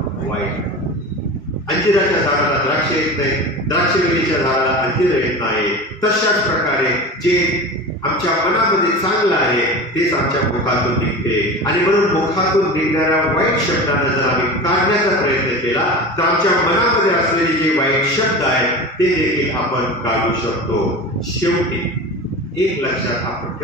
वाईट. अंजिराच्या झाडाला द्राक्ष येत नाही, द्राक्षवेलीच्या झाडाला अंजीर येत नाही. तशाच प्रकारे जे आमच्या मनामध्ये चांगलं आहे तेच आमच्या मुखातून निघते. आणि म्हणून मुखातून निघणाऱ्या वाईट शब्दांना जर आम्ही काढण्याचा प्रयत्न केला तर आमच्या मनामध्ये असलेले जे वाईट शब्द आहेत ते देखील आपण काढू शकतो. शेवटी एक लक्षात आपण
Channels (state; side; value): normal; both; correlation 0.31